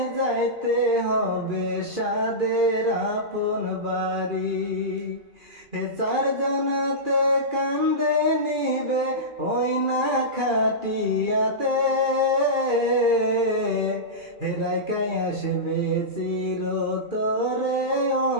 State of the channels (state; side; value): late; left; 2.4 ms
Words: যাইতে হবে সাদের আপন বাড়ি। 4 জনাতে কান্দে নিবে ওই না খাটিয়াতে রাইকাই আসবে চির তোরে